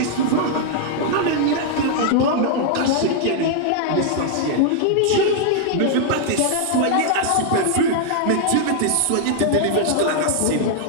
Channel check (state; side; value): different; both; correlation -0.01